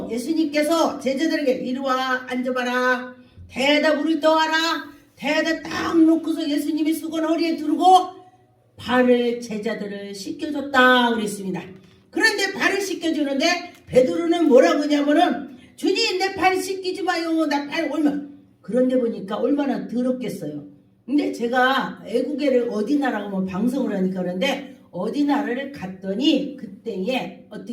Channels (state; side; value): identical; both; correlation 1.00